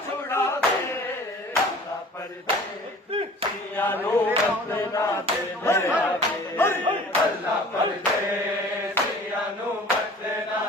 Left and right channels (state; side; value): normal; both; correlation 0.46